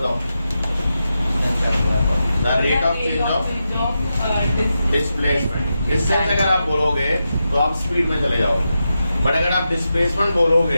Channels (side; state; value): both; inverted; correlation -0.89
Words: The rate of change of displacement. Distance अगर आप बोलोगे तो आप स्पीड में चले जाओगे, बट अगर आप डिस्प्लेसमेंट